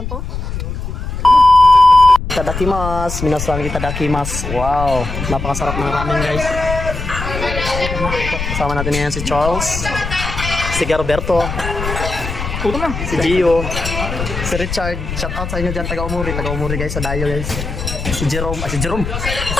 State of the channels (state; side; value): noise; left; rumble, 6 dB below the sound